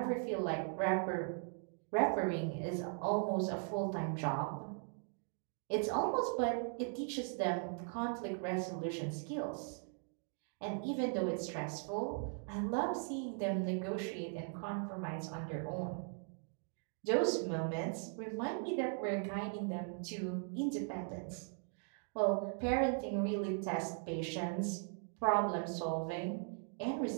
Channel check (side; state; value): left; silent; 52 dB below the other